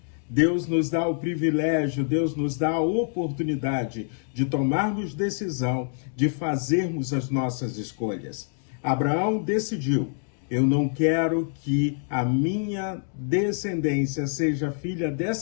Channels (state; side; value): silent; right; 61 dB below the other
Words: Deus nos dá o privilégio, Deus nos dá a oportunidade de tomarmos decisão, de fazermos as nossas escolhas. Abraão decidiu: eu não quero que a minha descendência seja filha